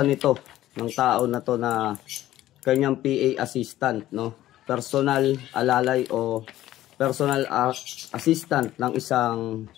nito ng tao na to na kanyang PA assistant, no? Personal alalay o personal assistant ng isang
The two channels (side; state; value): right; quieter; 14.2 dB